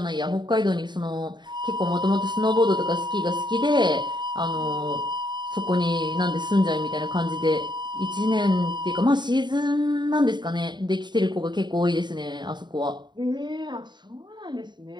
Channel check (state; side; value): late; left; 0.21 ms